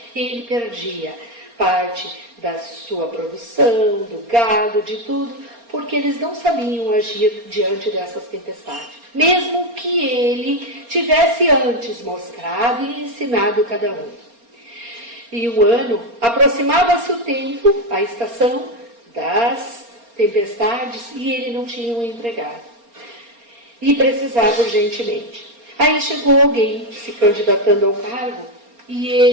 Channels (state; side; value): late; left; 4.3 ms